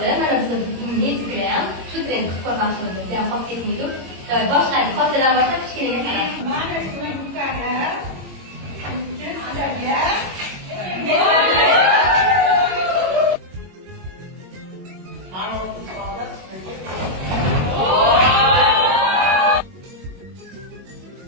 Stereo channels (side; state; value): left; late; 22 ms